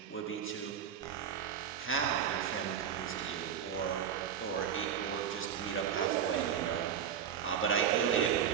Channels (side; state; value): left; quieter; 8.4 dB